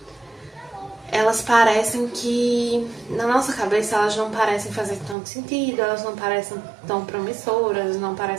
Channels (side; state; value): left; drops out; at 5.2 s